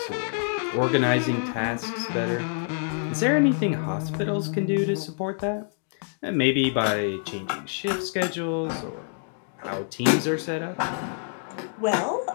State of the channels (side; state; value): right; silent; digital silence